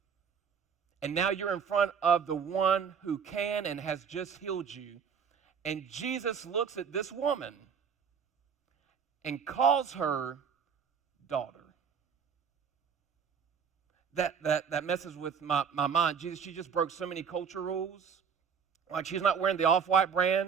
And now you're in front of the one who can and has just healed you. And Jesus looks at this woman and calls her daughter. That messes with my mind. Jesus, she just broke so many culture rules. Like she's not wearing the Off-White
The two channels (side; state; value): left; quieter; 6.8 dB